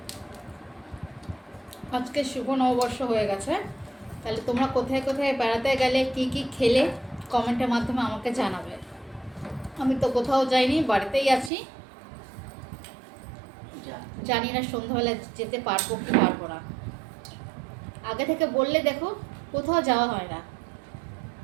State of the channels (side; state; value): left; drops out; at 11.5 s